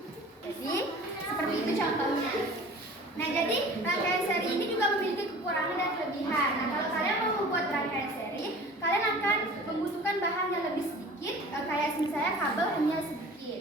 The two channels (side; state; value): both; normal; correlation 0.43